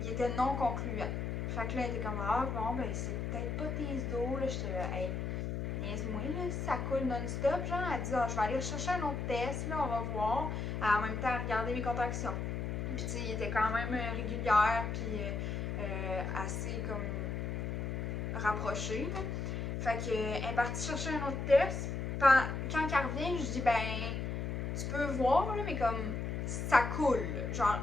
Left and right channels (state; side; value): noise; left; hum, 2 dB below the sound